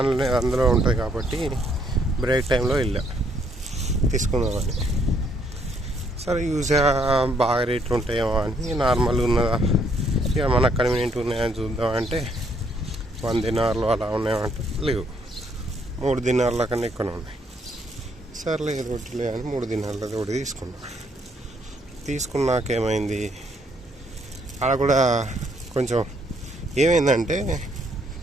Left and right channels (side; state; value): both; normal; correlation 0.70